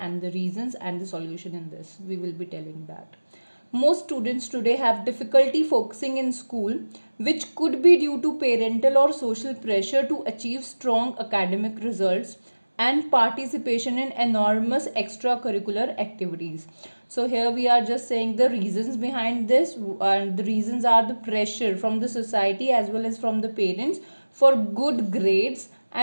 the reasons and the solution in this. We will be telling that. Most students today have difficulty focusing in school, which could be due to parental or social pressure to achieve strong academic results and participation in enormous extracurricular activities. So here we are just saying the reasons behind this, and the reasons are the pressure from the society as well as from the parents for good grades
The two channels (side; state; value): both; inverted; correlation -1.00